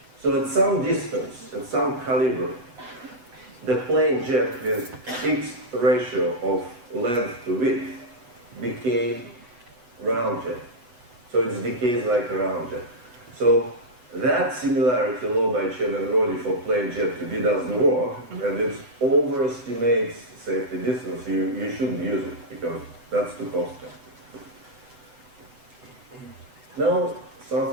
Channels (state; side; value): late; left; 8.1 ms